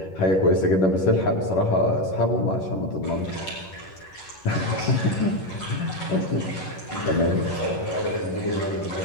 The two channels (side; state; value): right; late; 11 ms